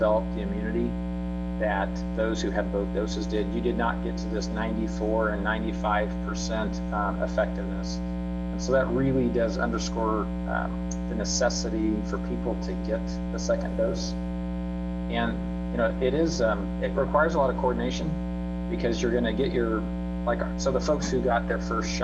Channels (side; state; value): both; identical; correlation 1.00